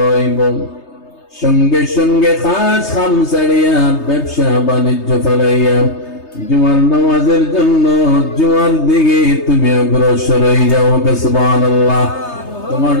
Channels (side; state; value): right; late; 3.3 ms